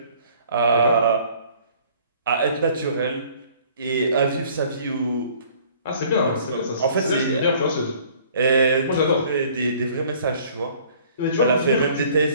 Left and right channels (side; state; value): both; inverted; correlation -0.55